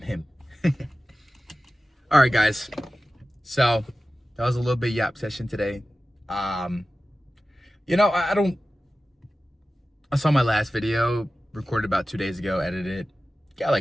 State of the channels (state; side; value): normal; both; correlation 0.95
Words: him. All right, guys. So that was a little bit yap session today. You know, I saw my last video recorded about 2 days ago, edited it, got